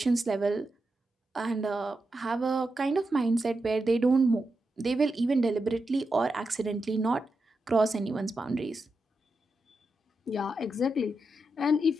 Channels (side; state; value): both; normal; correlation 0.88